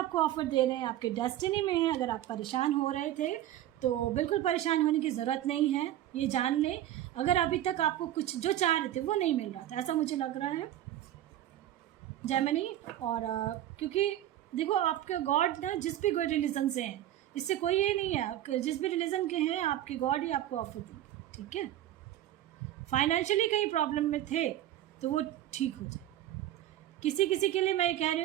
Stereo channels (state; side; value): quieter; left; 12.9 dB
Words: ऑफर दे रहे हैं, आपके डेस्टिनी में है। अगर आप परेशान हो रहे थे तो बिल्कुल परेशान होने की ज़रूरत नहीं है, ये जान लें। अगर अभी तक आपको कुछ जो चाह रहे थे वो नहीं मिल रहा था, ऐसा मुझे लग रहा है जेमिनी। और क्योंकि देखो आपके गॉड ना जिस भी कोई रिलीजन से हैं, इससे कोई ये नहीं है, जिस भी रिलीजन के हैं आपके गॉड ही आपको ऑफर देंगे। ठीक है, फाइनेंशियली कहीं प्रॉब्लम में थे तो वो ठीक हो जाए। किसी किसी के लिए मैं ये कह रही